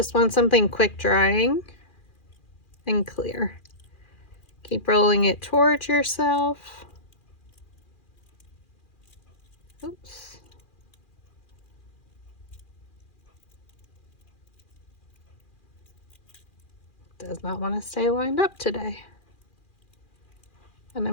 want something quick drying and clear. Keep rolling it towards yourself. Oops. Does not want to stay lined up today. And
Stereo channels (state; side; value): late; right; 2.4 ms